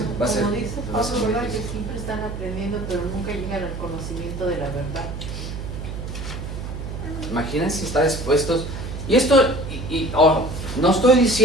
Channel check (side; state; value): right; noise; hum, 7 dB below the sound